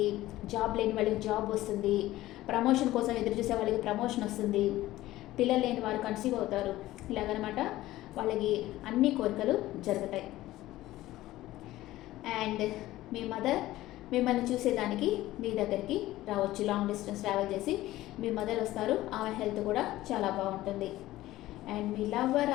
జాబ్ లేని వాళ్ళకి జాబ్ వస్తుంది, ప్రమోషన్ కోసం ఎదురు చూసే వాళ్ళకి ప్రమోషన్ వస్తుంది, పిల్లలు లేని వారు కన్సీవ్ అవుతారు. ఇలాగనమాట వాళ్ళకి అన్ని కోరికలు జరుగుతాయి. అండ్ మీ మదర్ మిమ్మల్ని చూసేదానికి మీ దగ్గరికి రావచ్చు. లాంగ్ డిస్టెన్స్ ట్రావెల్ చేసి మీ మదర్ వస్తారు. ఆమె హెల్త్ కూడా చాలా బాగుంటుంది. And me lover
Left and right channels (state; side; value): quieter; right; 16.1 dB